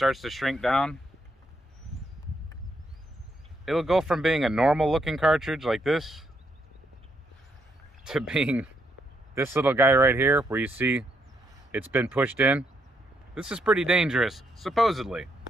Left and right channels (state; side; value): normal; both; correlation 0.76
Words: to shrink down. It'll go from being a normal looking cartridge like this to being this little guy right here where you see it's been pushed in. This is pretty dangerous, supposedly.